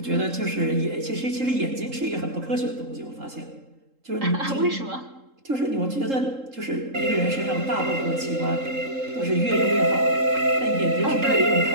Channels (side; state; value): left; late; 3.7 ms